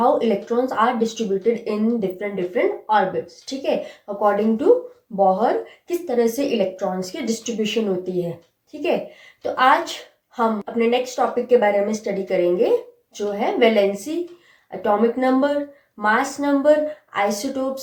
electrons are distributed in different different orbits. ठीक है, अकॉर्डिंग टू बोहर किस तरह से इलेक्ट्रॉन्स की डिस्ट्रीब्यूशन होती है। ठीक है, तो आज हम अपने नेक्स्ट टॉपिक के बारे में स्टडी करेंगे जो है valency, atomic number, mass number,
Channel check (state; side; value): identical; both; correlation 1.00